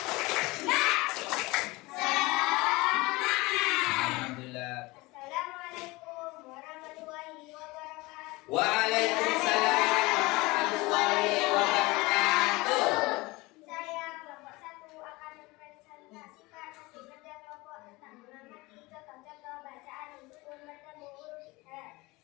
Waalaikumsalam warahmatullahi wabarakatuh. Saya kelompok 1 akan mempresentasikan hasil kerja kelompok tentang mengamati contoh-contoh bacaan sukun bertemu huruf izhar.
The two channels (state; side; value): quieter; right; 22.5 dB